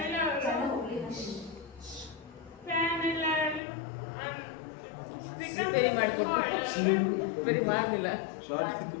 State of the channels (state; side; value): drops out; right; at 3.6 s